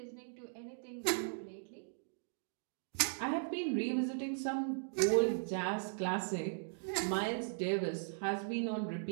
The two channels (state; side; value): silent; left; digital silence